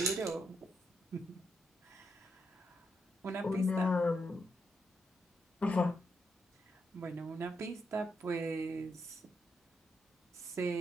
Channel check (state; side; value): normal; both; correlation 0.81